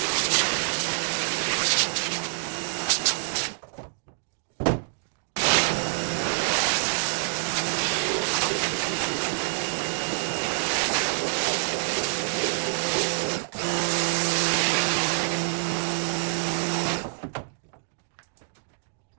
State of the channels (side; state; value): left; silent; digital silence